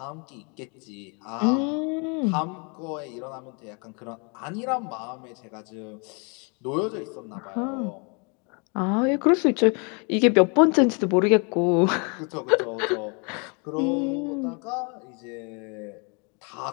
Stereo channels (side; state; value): right; quieter; 34.3 dB